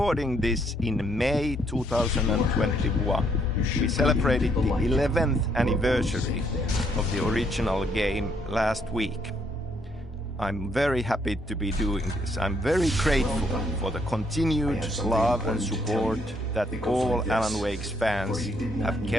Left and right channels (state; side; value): normal; both; correlation 0.70